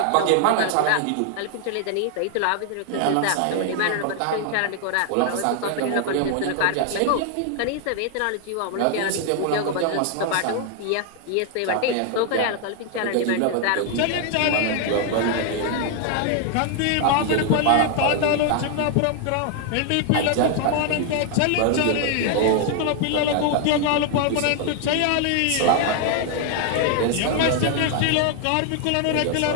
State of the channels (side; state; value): both; different; correlation 0.00